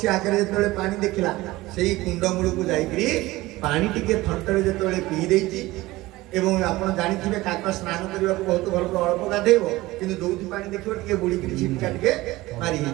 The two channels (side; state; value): left; quieter; 18.9 dB